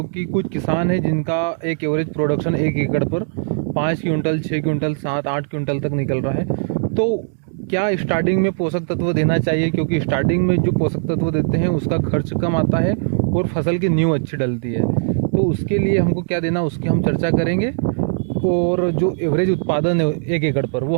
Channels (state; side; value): silent; left; digital silence